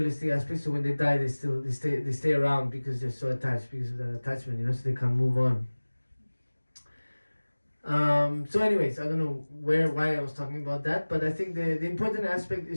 aspects, so when they die, they stay around because they're so attached, because of that attachment, so they can't move on. So anyways, I don't know why I was talking about that, but I think the important aspect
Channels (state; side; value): inverted; both; correlation -1.00